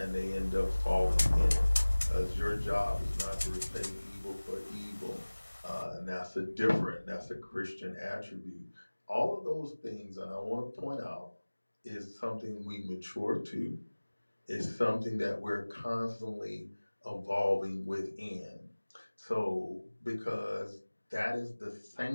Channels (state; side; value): inverted; both; correlation -1.00